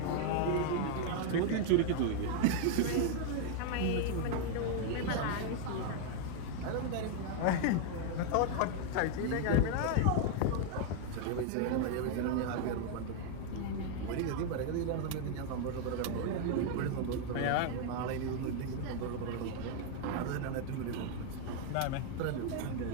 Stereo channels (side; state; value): both; different; correlation 0.00